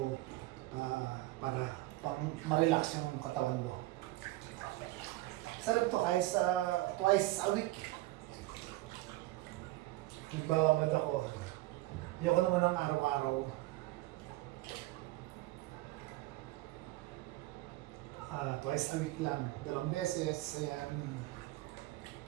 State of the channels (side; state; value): left; quieter; 18.5 dB